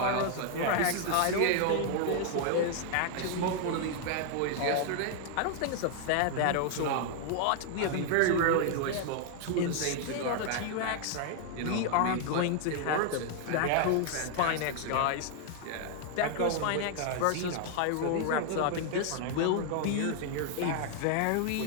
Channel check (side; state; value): both; different; correlation 0.00